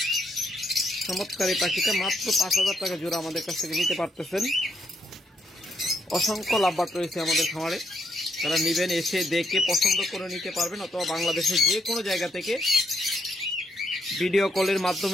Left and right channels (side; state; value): both; normal; correlation 0.76